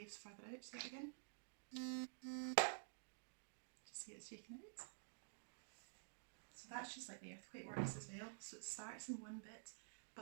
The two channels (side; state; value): left; silent; digital silence